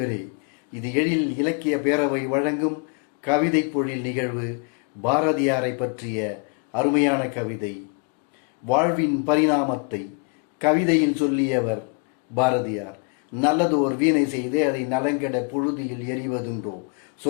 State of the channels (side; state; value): right; quieter; 36.2 dB